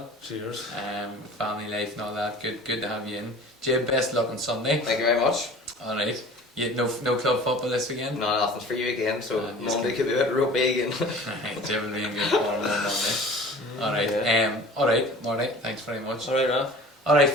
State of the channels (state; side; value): normal; both; correlation 0.43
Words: Cheers. Family life and all that. Good to have you in. Jim, best luck on Sunday. Thank you very much. All right. You no club football this weekend? No, nothing for you again. So Monday could be a bit rugby again. Right, Jim will be in good form on Monday. All right. All right, Marty. Thanks very much. All right, Ralph. All right,